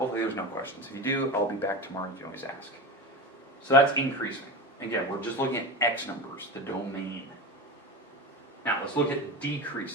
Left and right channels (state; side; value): normal; both; correlation 0.24